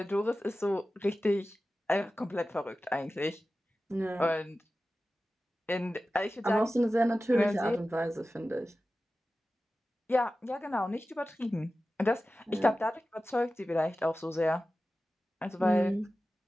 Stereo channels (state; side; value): normal; both; correlation 0.95